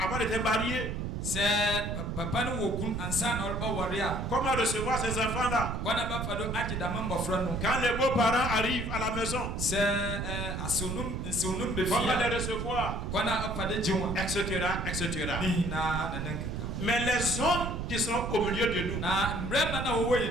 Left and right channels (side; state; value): right; noise; rumble, 3 dB below the sound